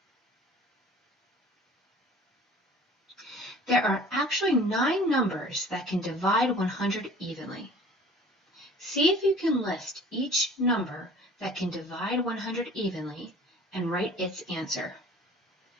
There are actually 9 numbers that can divide 100 evenly. See if you can list each number that can divide 100 evenly and write its answer.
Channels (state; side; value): normal; both; correlation 0.47